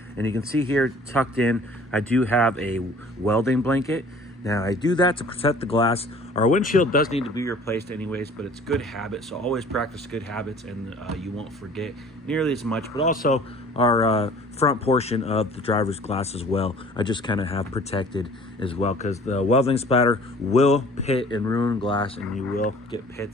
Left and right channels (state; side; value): normal; both; correlation 0.50